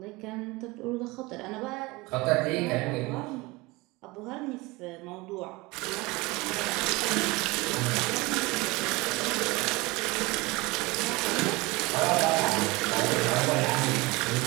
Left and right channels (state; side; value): quieter; left; 23.1 dB